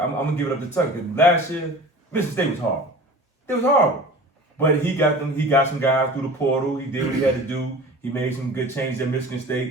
gonna give it up to Tucker. Cause last year, Michigan State was horrible. It was horrible. But he got some guys through the portal. He did what he had to do. He made some good changes at Michigan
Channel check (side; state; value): both; normal; correlation 0.39